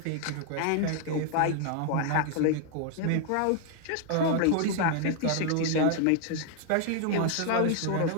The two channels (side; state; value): both; different; correlation 0.00